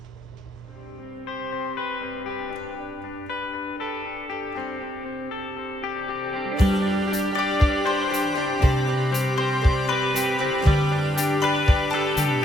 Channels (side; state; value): both; normal; correlation 0.74